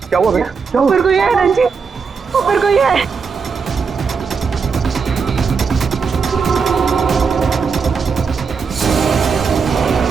क्या हुआ भैया? क्या हुआ? ऊपर कोई है रंजीत, ऊपर कोई है।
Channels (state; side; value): quieter; left; 5.5 dB